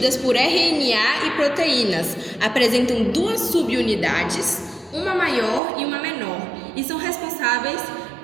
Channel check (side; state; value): left; drops out; at 5.6 s